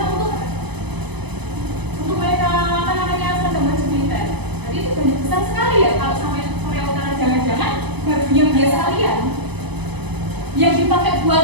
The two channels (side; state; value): left; late; 0.99 ms